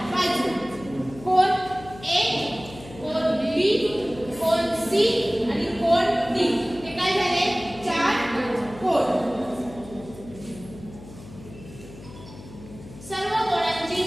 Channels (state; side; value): noise; left; hum, 17 dB below the sound